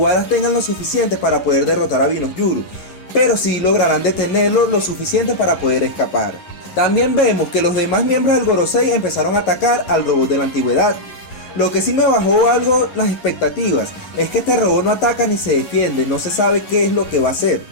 tengan lo suficiente para poder derrotar a Binoyuru, pero sí lograrán detenerlo lo suficiente para poder escapar. También vemos que los demás miembros del Gorosei empezaron a atacar al robot de la antigüedad. Lo que sí me bajó algo las expectativas es que este robot no ataca ni se defiende, no se sabe qué es lo que va a hacer.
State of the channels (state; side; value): late; right; 11 ms